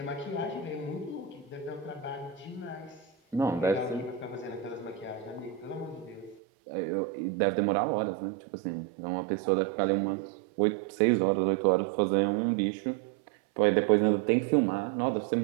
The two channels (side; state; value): left; drops out; at 6.4 s